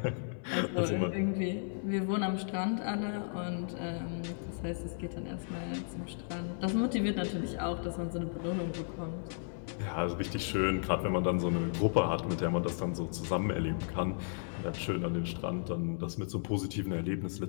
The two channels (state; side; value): silent; right; 55 dB below the other